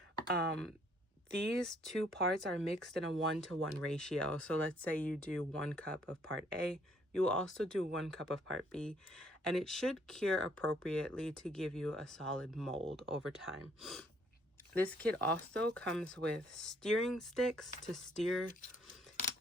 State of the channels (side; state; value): both; normal; correlation 0.65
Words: These 2 parts are mixed in a 1-to-1 ratio. So let's say you do 1 cup of part A, you will also do 1 cup of part B, and it should cure appropriately to give you a solid mold over time. This kit also comes with steering sticks to steer